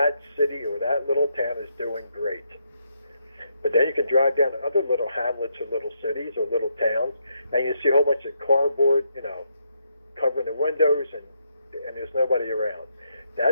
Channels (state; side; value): inverted; both; correlation -0.78